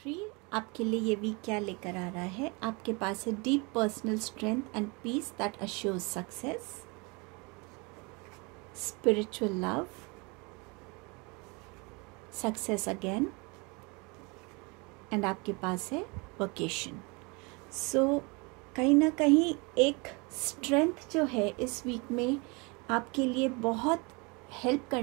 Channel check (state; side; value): quieter; left; 28.9 dB